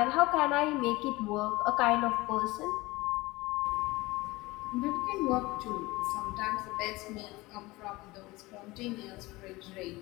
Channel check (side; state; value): right; quieter; 21.1 dB